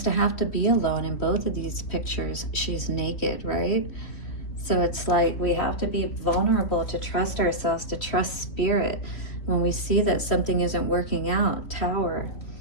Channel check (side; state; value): right; late; 3.1 ms